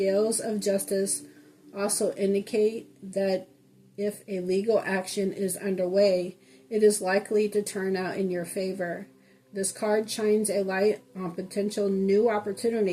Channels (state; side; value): identical; both; correlation 1.00